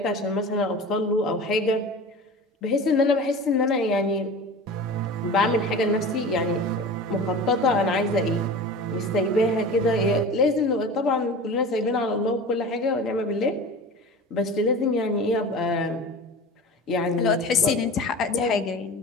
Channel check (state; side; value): normal; both; correlation 0.35